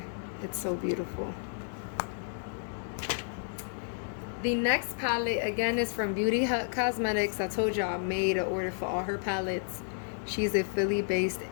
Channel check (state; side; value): silent; right; digital silence